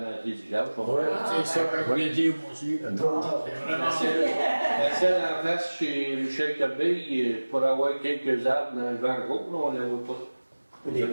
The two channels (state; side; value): inverted; both; correlation -1.00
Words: les villages. Ouais, C'est ça que je voulais dire moi aussi. Trop tard. La celle en face chez Michel Corbeil, pour avoir quelques arbres dans le vent gros, là, on ne les voit pas. Des